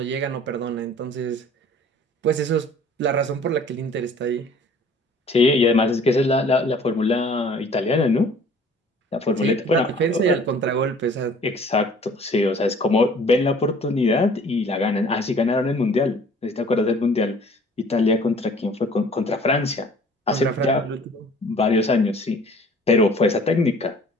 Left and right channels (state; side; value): normal; both; correlation 0.52